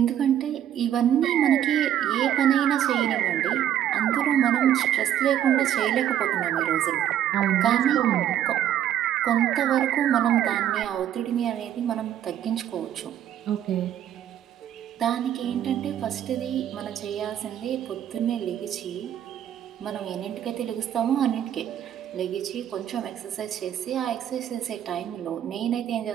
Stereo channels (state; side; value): quieter; left; 10.8 dB